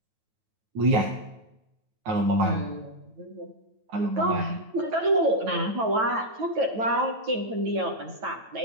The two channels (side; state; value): left; late; 9.1 ms